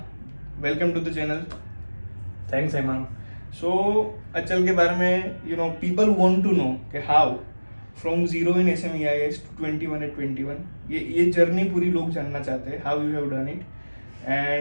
Welcome to the channel. Thanks Hemang. So Achal के बारे में people want to know कि how from zero in SMEIS to 21 at 21 ये journey पूरी लोग जानना चाहते हैं, how you have done it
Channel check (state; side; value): inverted; both; correlation -1.00